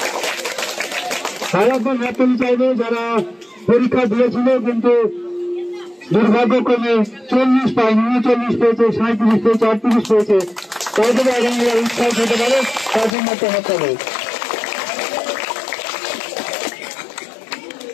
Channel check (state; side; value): drops out; right; at 13.2 s